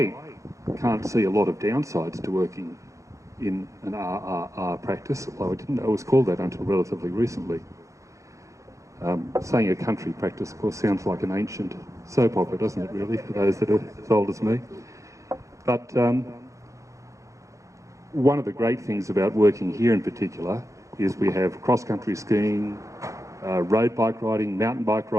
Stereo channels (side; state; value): left; late; 0.15 ms